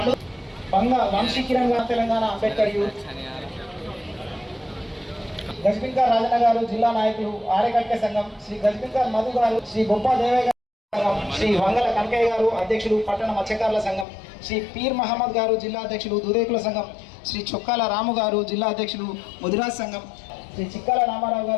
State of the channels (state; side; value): drops out; right; at 14.1 s